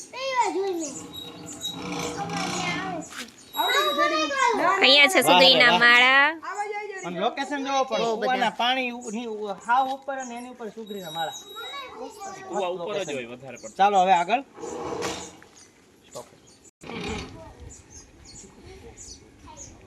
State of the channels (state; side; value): identical; both; correlation 1.00